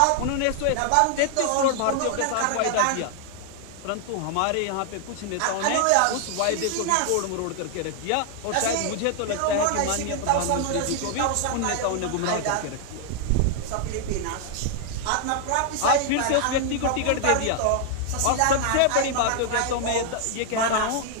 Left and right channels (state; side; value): different; both; correlation 0.00